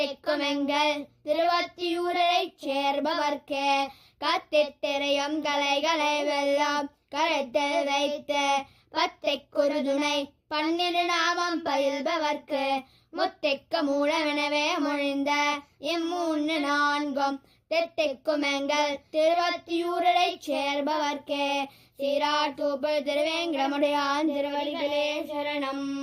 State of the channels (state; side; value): identical; both; correlation 1.00